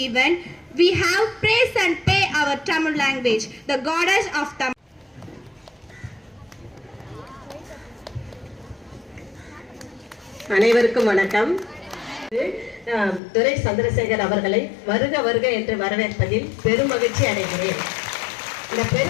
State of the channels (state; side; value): drops out; right; at 13.2 s